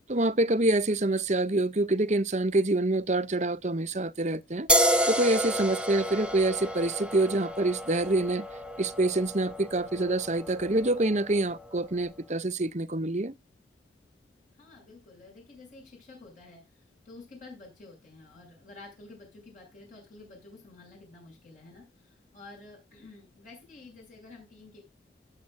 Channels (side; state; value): both; normal; correlation 0.42